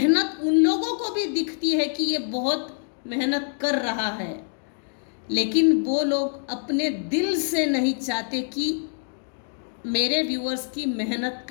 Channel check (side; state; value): right; silent; 59 dB below the other